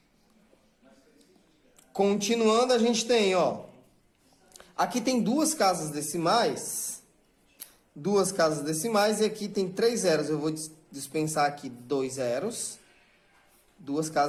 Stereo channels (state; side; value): identical; both; correlation 1.00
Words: Continuando, a gente tem, ó. Aqui tem duas casas decimais. Duas casas decimais e aqui tem 3 zeros. Eu vou dispensar aqui 2 zeros. Duas